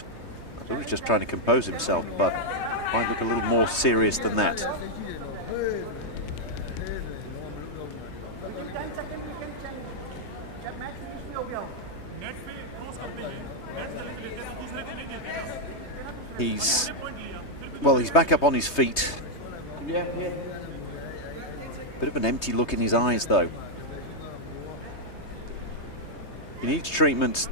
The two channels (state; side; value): late; right; 3.2 ms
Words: I thought he was just trying to compose himself, but might look a little more serious than that. He's back up on his feet. Bit of an empty look in his eyes, though. If he needs treatment,